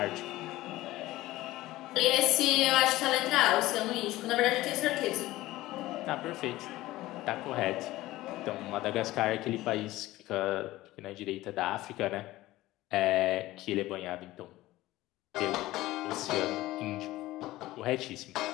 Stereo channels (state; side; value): quieter; right; 17.2 dB